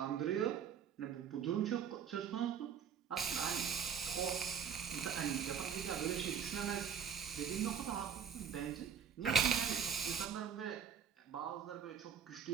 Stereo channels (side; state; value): left; quieter; 7.7 dB